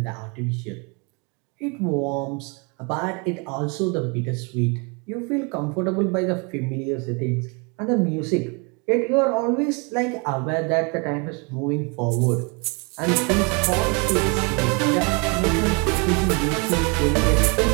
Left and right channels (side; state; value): left; quieter; 32.4 dB